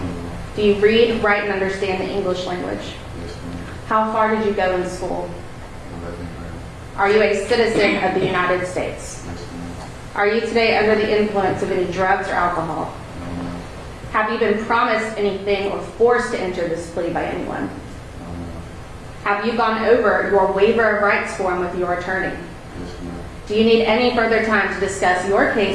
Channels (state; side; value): identical; both; correlation 1.00